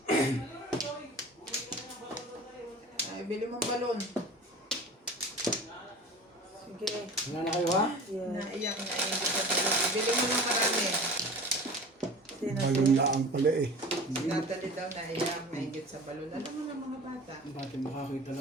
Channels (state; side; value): normal; both; correlation 0.38